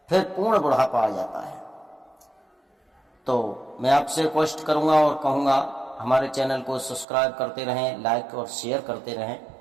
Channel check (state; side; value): drops out; left; at 7.1 s